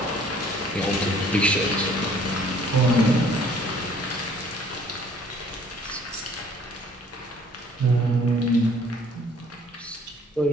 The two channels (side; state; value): both; normal; correlation 0.56